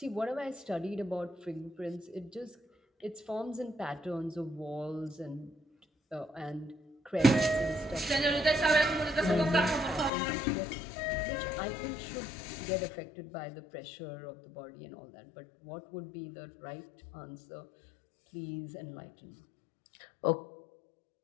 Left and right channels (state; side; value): drops out; right; at 10.1 s